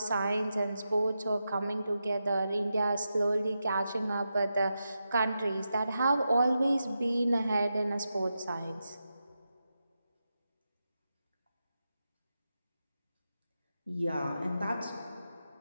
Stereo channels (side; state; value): both; inverted; correlation -0.88